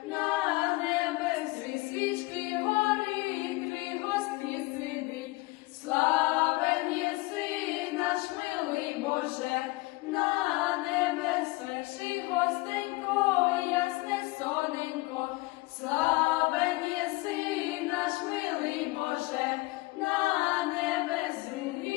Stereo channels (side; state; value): right; quieter; 22.6 dB